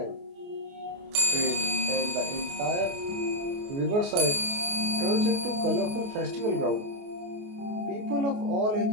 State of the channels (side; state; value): left; late; 29 ms